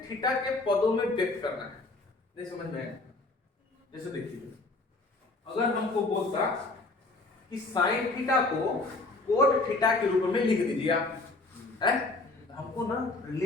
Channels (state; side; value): quieter; right; 3.2 dB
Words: थीटा के पदों में व्यक्त करना है। नहीं समझ में आया? जैसे देखिए, अगर हमको बोलता कि साइन थीटा को कोट थीटा के रूप में लिख दीजिए आप, है? हमको ना